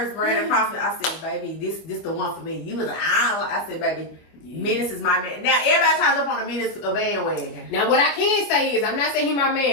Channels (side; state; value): right; late; 24 ms